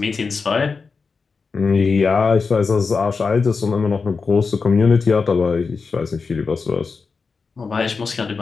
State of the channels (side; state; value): right; quieter; 4.8 dB